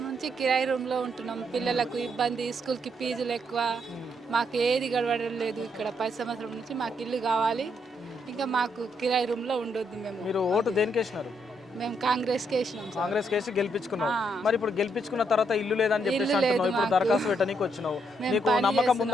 నుంచి కిరాయి రూమ్లో ఉంటున్నాం. పిల్లలకు ఇబ్బంది, స్కూల్కి ఫీజులు ఎక్కువ, మాకు ఏది గడవడం లేదు. ఇక్కడ 10 సంవత్సరం నుంచి మాకు ఇల్లు కావాలి, ఇంకా మాకు కిరాయి రూమ్లో ఉండొద్దు. మీరు ఓటు దేనికి వేసినారు? మేము కాంగ్రెస్కి వేసినాం. కాంగ్రెస్ కేసి గెలిపించుకున్నావు. మరి ఇప్పుడు గెలిపించుకున్న తర్వాత ఇల్లు లేదని చెప్పేసి అంటున్నావు. ఇప్పుడు దరఖాస్తు పెట్టడానికి వచ్చినావు. నీకు నమ్మకం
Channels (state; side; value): normal; both; correlation 0.76